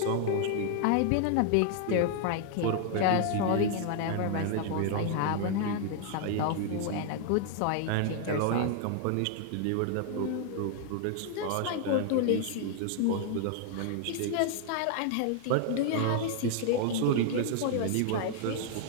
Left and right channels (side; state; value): both; different; correlation 0.00